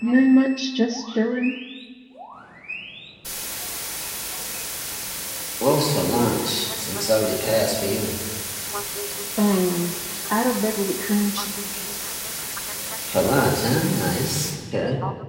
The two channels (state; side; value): identical; both; correlation 1.00